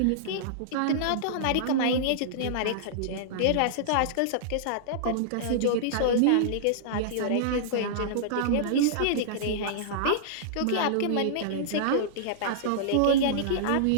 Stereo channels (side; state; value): both; different; correlation -0.02